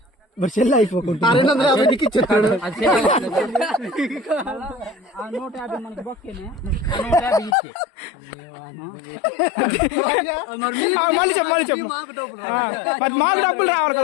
మరి సెల్ అయిపోకుండా 250 నీకు ఇచ్చేస్తాడు. మాకు డబ్బులు రావాలి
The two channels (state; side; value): drops out; right; at 7.6 s